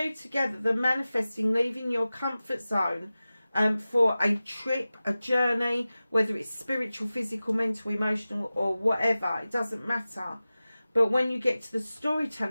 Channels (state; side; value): inverted; both; correlation -0.96